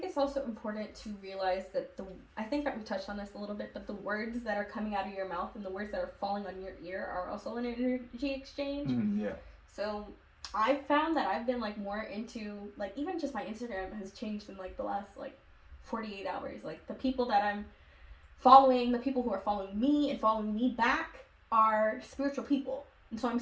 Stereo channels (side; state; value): both; identical; correlation 1.00